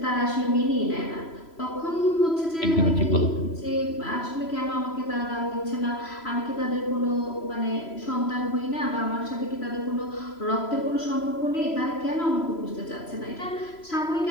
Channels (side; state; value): right; late; 3.0 ms